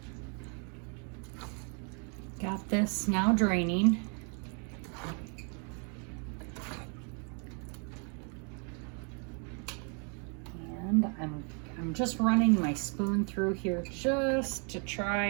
Got this now draining. And I'm just running my spoon through here just to try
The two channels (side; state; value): left; quieter; 38.6 dB